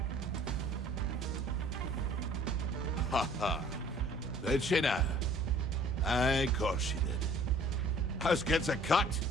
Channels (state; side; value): normal; both; correlation 0.53